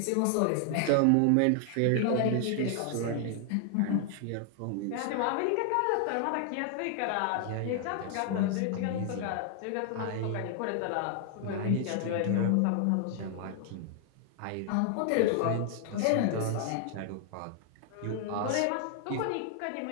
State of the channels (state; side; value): different; both; correlation 0.00